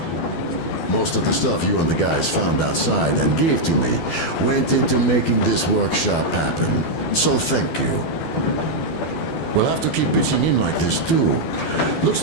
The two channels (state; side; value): late; right; 12 ms